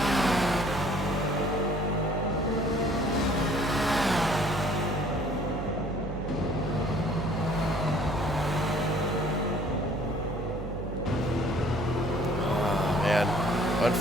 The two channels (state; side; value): noise; right; hum, 6 dB below the sound